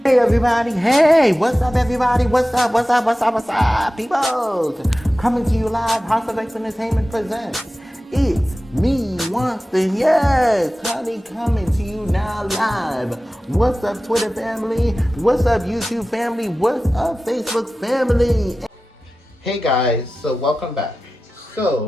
Hey everybody, hey, what's up everybody, what's up, people? Coming to you live, House of X Entertainment presents, it's me, Winston, yes, honey, coming to you now live. What's up Twitter family, what's up YouTube family, what's up Facebook family? Hey guys, so welcome back.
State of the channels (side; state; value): both; normal; correlation 0.95